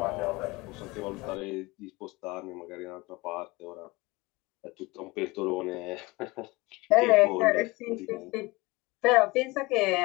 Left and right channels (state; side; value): quieter; right; 22.8 dB